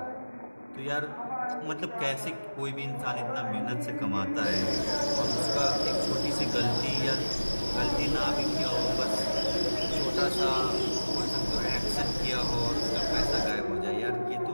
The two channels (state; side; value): inverted; both; correlation -1.00